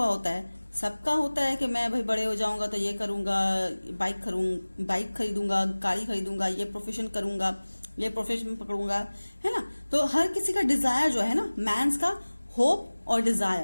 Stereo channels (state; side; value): inverted; both; correlation -1.00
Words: होता है. सबका होता है कि मैं भाई बड़े हो जाऊंगा तो ये करूंगा, बाइक खरीदूंगा, गाड़ी खरीदूंगा, ये प्रोफेशन करूंगा, ये प्रोफेशन पकड़ूंगा, है ना. तो हर किसी का डिजायर जो है ना, मैंस का होप और